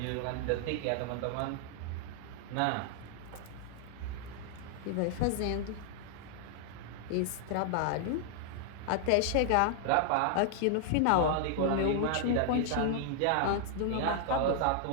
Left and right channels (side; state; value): both; different; correlation 0.00